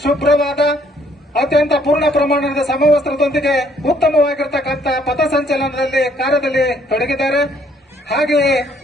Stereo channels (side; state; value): both; normal; correlation 0.65